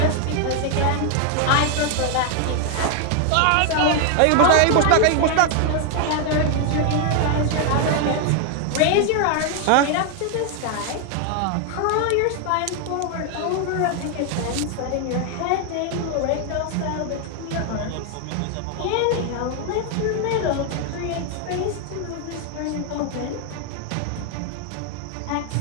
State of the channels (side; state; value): both; different; correlation 0.00